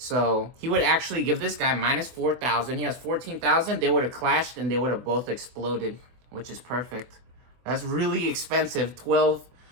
he would actually give this guy minus 4,000. He has 14,000. They would have clashed and they would have both exploded, which is perfect. That's really expensive, 12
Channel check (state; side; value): late; left; 23 ms